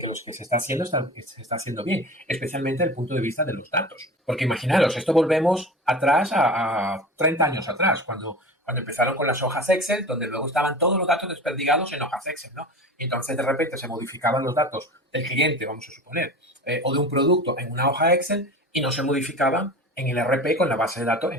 lo que se está haciendo se está haciendo bien, especialmente desde el punto de vista de los datos. Porque imaginaros, esto volvemos atrás a 30 años atrás, cuando Cuando empezaron con las hojas Excel, donde luego estaban todos los datos desperdigados en hojas Excel, ¿no? Y entonces de repente se modificaban los datos del cliente, vamos a suponer, o de un producto en una hoja Excel y no se modificaban en el RP con la base de datos, en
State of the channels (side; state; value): both; normal; correlation 0.34